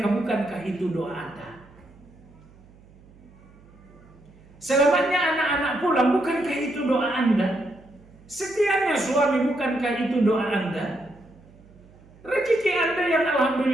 bukankah itu doa Anda? Selamatnya anak-anak pulang, bukankah itu doa Anda? Setiapnya suami, bukankah itu doa Anda? Rezeki Anda yang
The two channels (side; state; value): right; noise; hum, 25 dB below the sound